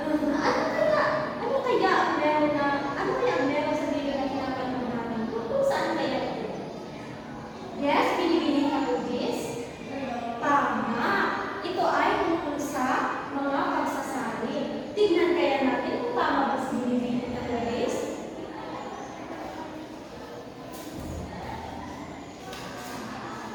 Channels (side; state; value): both; identical; correlation 1.00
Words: kaya ang meron sa video na pinapanood natin? Kung saan kaya ito? Yes, binibining na movies? Tama! Ito ay tungkol sa mga pagsasali. Tignan kaya natin kung tama ba sa binibining na movies?